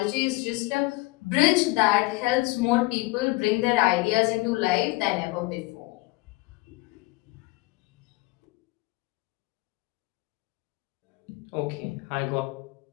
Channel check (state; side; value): quieter; right; 22.1 dB